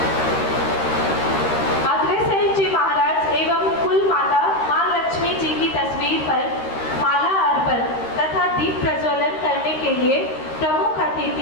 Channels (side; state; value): right; late; 13 ms